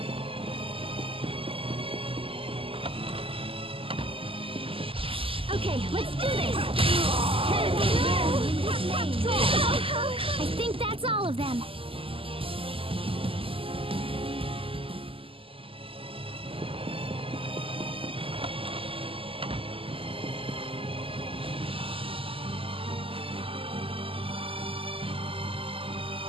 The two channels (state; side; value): late; left; 0.26 ms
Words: Okay, let's do this! I think that's all of them.